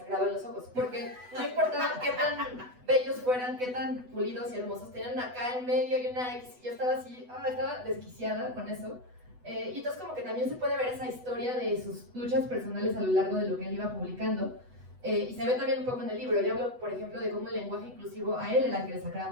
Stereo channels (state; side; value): late; left; 8.1 ms